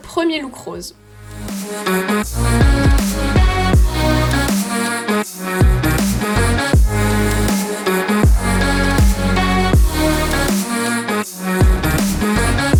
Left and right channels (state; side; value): identical; both; correlation 1.00